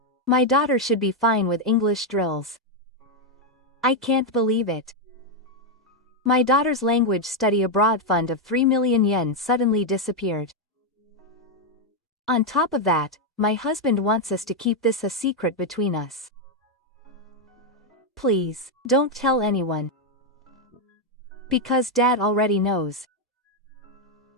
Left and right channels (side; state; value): both; normal; correlation 0.02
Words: My daughter should be fine with English drills. I can't believe it. My daughter's language study abroad fund of 3 million yen suddenly disappeared. On top of that, my husband wants us to keep this a secret between us. Please, don't tell anyone. Because Dad already knows.